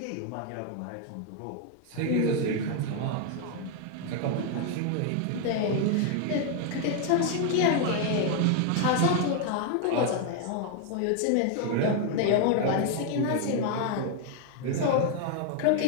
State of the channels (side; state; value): both; different; correlation 0.00